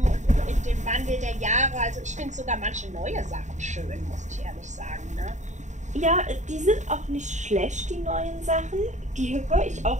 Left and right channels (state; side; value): late; left; 0.34 ms